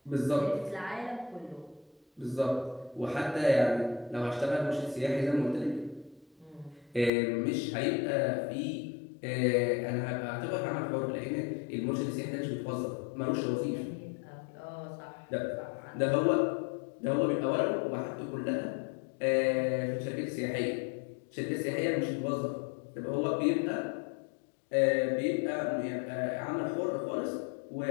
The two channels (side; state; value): right; drops out; at 7.1 s